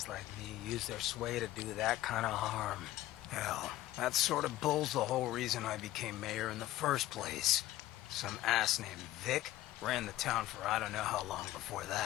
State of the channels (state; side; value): quieter; right; 15.2 dB